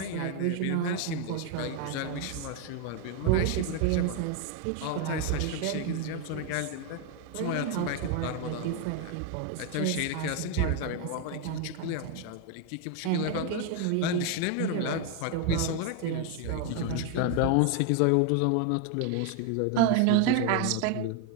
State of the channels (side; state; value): both; different; correlation 0.01